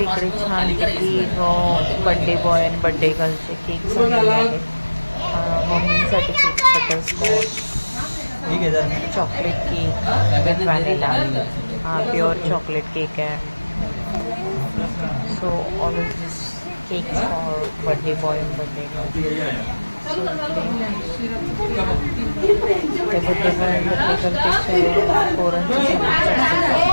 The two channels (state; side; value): inverted; both; correlation -1.00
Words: छान बर्थडे बॉय आणि बर्थडे गर्लचे केक झालेले आहेत. मम्मीसाठी cake butterscotch, chocolate cake with vanilla. हा प्युअर चॉकलेट केक आहे. So all of this cake for birthday boy आणि बर्थडे गर्ल. ते बर्थडे बॉय आणि बर्थडे गर्लपेक्षा पोरांची